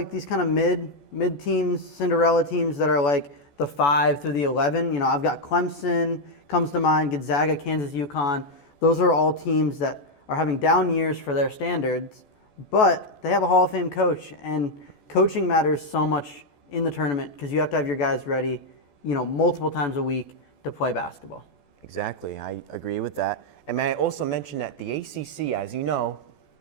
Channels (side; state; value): right; late; 14 ms